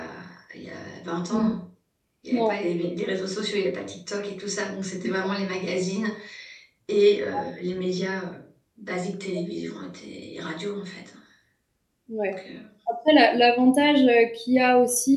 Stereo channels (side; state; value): both; identical; correlation 1.00